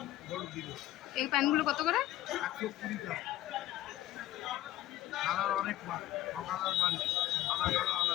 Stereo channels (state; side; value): quieter; right; 14.5 dB